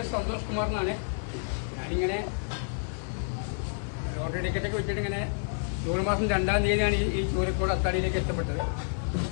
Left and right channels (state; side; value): silent; right; digital silence